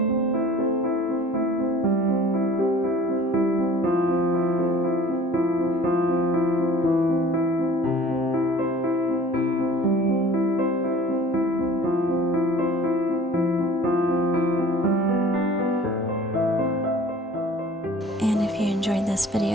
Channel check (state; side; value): normal; both; correlation 0.47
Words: And if you enjoyed this